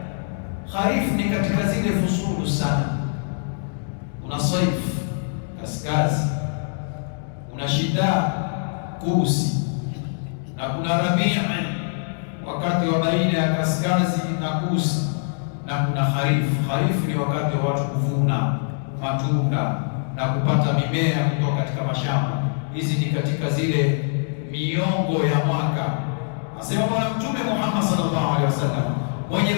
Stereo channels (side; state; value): right; silent; digital silence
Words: Kharif ni katika zile fusulu sana. Kuna saif kaskazi, kuna shida kusi, na kuna rabii wakati wa baina ya kaskazi na kusi, na kuna kharif. Kharif ni wakati wa watu kuvuna matunda na kupata mimea kutoka katika mashamba. Hizi ni katika zile miongo ya mwaka. Asema Bwana Mtume Muhammad sallallahu alaihi wasallam, mwenye